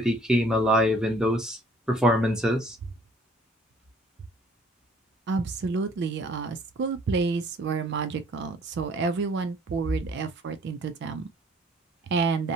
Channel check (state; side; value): normal; both; correlation 0.57